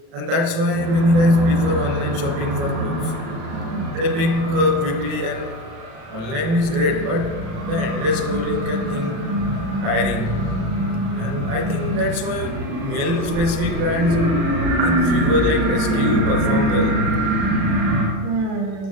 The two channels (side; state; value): left; late; 36 ms